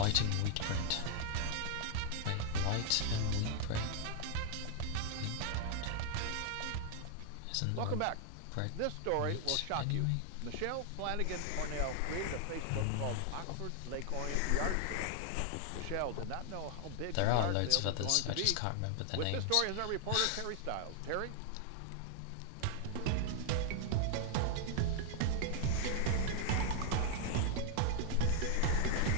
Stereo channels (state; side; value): different; both; correlation 0.00